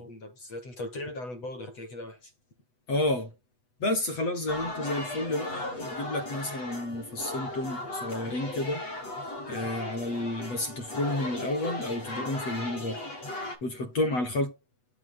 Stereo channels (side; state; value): right; late; 8.1 ms